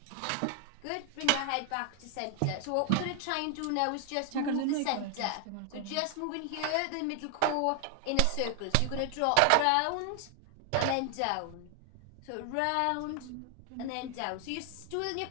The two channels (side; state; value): both; different; correlation 0.00